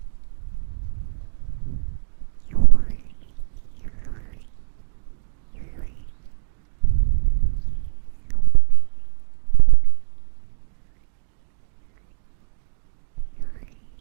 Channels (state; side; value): silent; left; digital silence